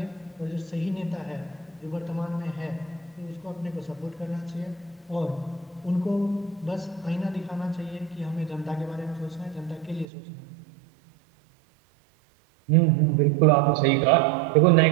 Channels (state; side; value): drops out; left; at 10.1 s